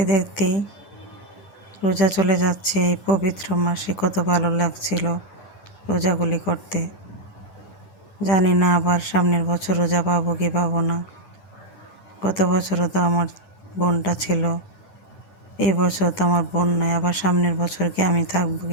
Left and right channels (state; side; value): late; right; 9.4 ms